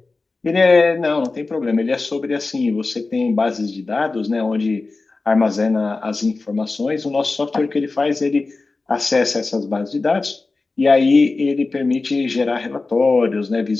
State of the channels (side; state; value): right; quieter; 3.6 dB